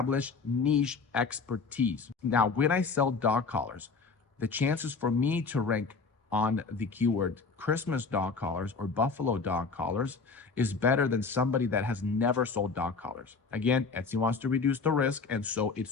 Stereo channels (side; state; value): right; quieter; 4.7 dB